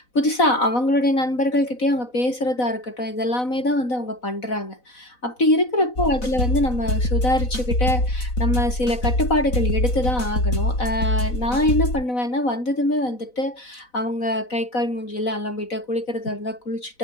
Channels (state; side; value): late; right; 4.0 ms